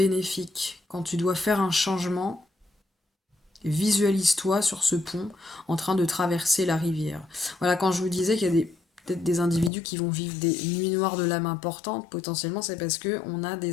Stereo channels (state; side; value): drops out; right; at 9.7 s